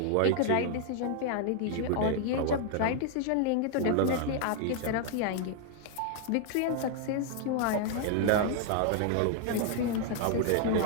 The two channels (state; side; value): different; both; correlation 0.00